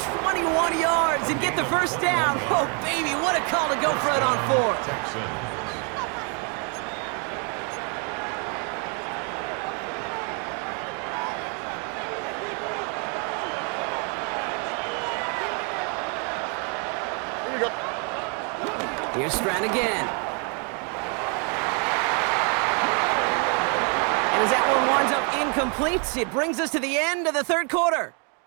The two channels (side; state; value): left; quieter; 37.3 dB